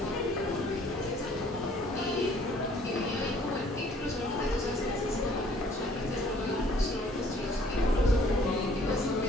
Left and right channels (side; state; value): both; normal; correlation 0.58